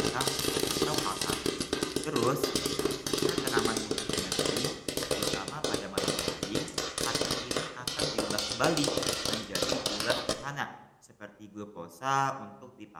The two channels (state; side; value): identical; both; correlation 1.00